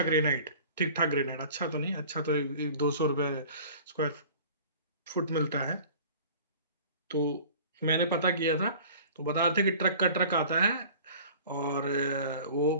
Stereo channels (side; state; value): both; inverted; correlation -0.44